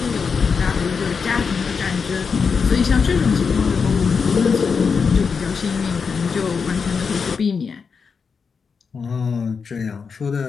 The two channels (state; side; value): quieter; right; 5.6 dB